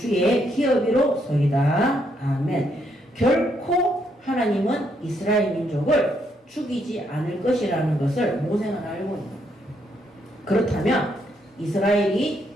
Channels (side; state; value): both; normal; correlation 0.75